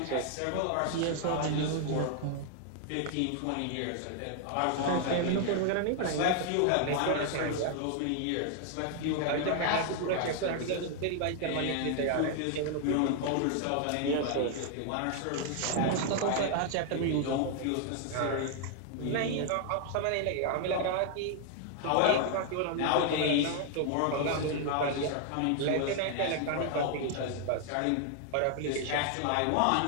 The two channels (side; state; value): both; different; correlation 0.00